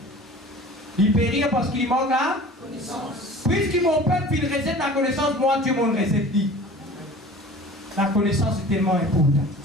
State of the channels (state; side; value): normal; both; correlation 0.43